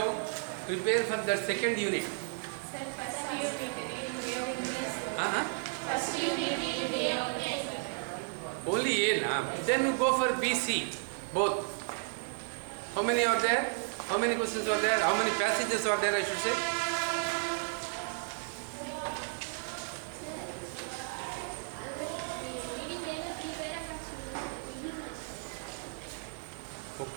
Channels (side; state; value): left; silent; 55 dB below the other